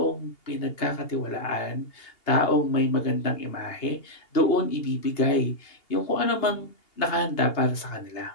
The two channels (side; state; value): right; late; 2.8 ms